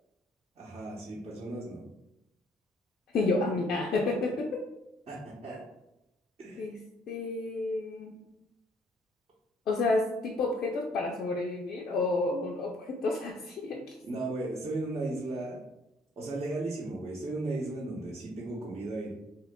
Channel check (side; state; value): both; normal; correlation 0.63